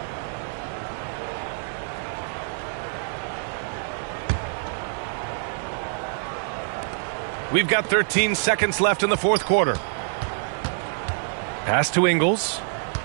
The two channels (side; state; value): left; silent; digital silence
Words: We've got 13 seconds left in the fourth quarter. Pass to Ingles.